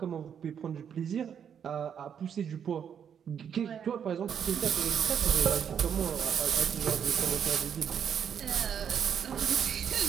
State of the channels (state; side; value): quieter; left; 8.1 dB